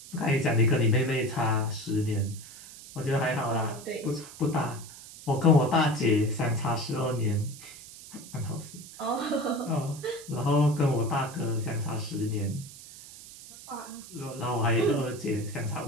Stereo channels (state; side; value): noise; right; hiss, 16 dB below the sound